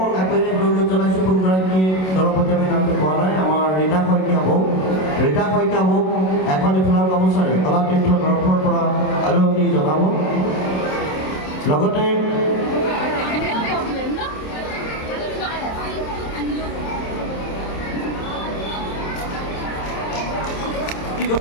আগবাঢ়ি অনুৰোধ জনাইছোঁ। কোনগৰাকীয়ে দলপতি আমি নামটো পোৱা নাই। আমাৰ ৰীতা শইকীয়া বৌ এখন ফুলাম গামোচাৰে কলাতীৰ্থৰ তৰফৰ পৰা আদৰণি জনাব। লগতে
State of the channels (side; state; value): right; late; 27 ms